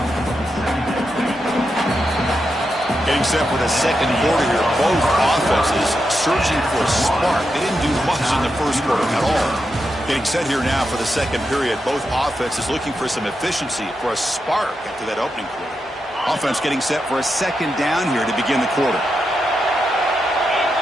Getting set for the second quarter here. Both offenses searching for a spark. They didn't do much in the first quarter at all. Getting set here now for the second period. Both offenses looking for some efficiency, for a spark after that opening quarter. Offense getting set for a second down here to begin the quarter.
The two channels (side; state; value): both; normal; correlation 0.86